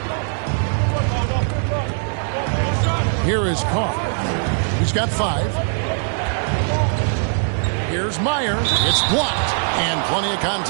Here is Carr. He's got 5. Here's Meyer. It's blocked. And plenty of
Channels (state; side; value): silent; left; 56 dB below the other